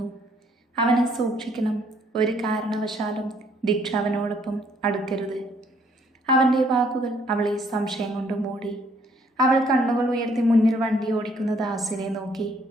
അവനെ സൂക്ഷിക്കണം. ഒരു കാരണവശാലും ദീക്ഷ അവനോടൊപ്പം അടുക്കരുത്. അവൻ്റെ വാക്കുകൾ അവളെ സംശയം കൊണ്ട് മൂടി. അവൾ കണ്ണുകൾ ഉയർത്തി മുന്നിൽ വണ്ടി ഓടിക്കുന്ന ദാസിനെ നോക്കി.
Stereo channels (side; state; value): both; normal; correlation 0.65